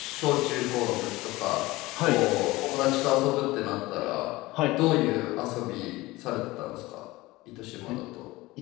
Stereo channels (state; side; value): quieter; right; 20.0 dB